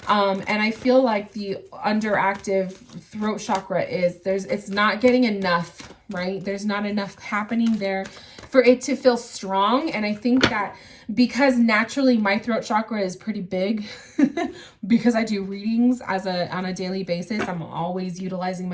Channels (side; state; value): both; identical; correlation 1.00